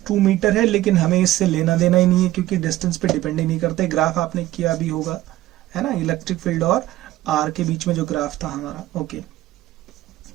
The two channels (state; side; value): quieter; left; 15.5 dB